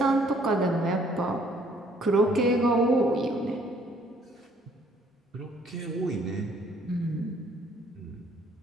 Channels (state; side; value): normal; both; correlation 0.62